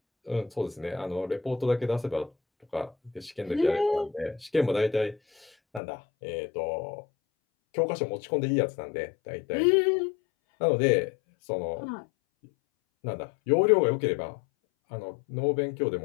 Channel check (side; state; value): right; drops out; at 5.8 s